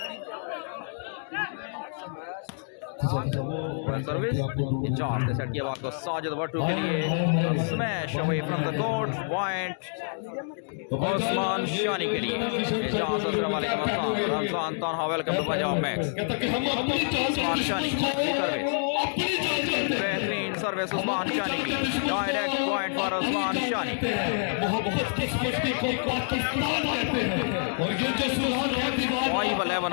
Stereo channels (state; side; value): silent; right; digital silence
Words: सर्विस चांस ने सेट किया बात को साजिद वट्टू के लिए और smash away from the court, point Osman Shani के लिए। चांस अस्सलाम वालेकुम Ramzan Tanha, welcome to Punjab Max. Osman Shani की सर्विस, बेहतरीन सर्विस ओस्मान शानी की, direct point for Osman Shani. 5-11